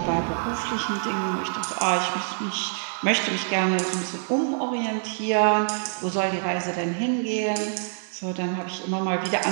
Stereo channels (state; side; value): silent; left; 56 dB below the other